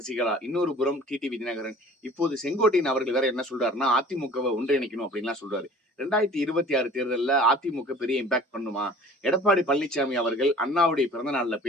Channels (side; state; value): both; normal; correlation 0.47